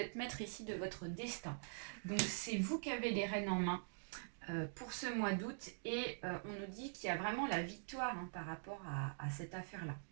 maître ici de votre destin. Donc c'est vous qui avez les rênes en main pour ce mois d'août. Et on nous dit qu'il y a vraiment la victoire, hein, par rapport à cette affaire-là.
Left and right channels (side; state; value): left; silent; digital silence